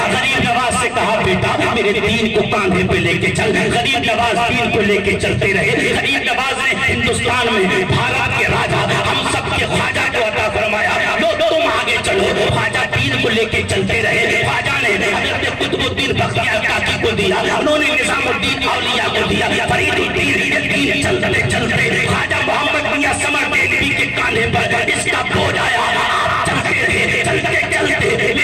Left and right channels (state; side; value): identical; both; correlation 1.00